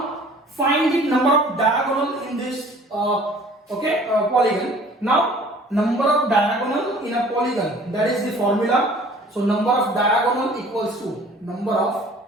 find the number of diagonal in this polygon. Now number of diagonal in a polygon, that is the formula. So number of diagonal equals to number of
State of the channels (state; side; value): normal; both; correlation 0.51